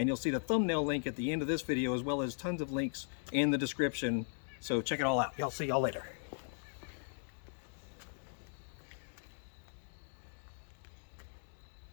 you'll see the thumbnail link at the end of this video, as well as tons of links in the description. So check it all out. I'll see y'all later.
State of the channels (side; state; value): right; silent; digital silence